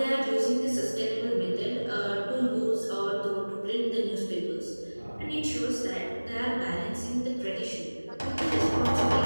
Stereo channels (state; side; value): inverted; both; correlation -1.00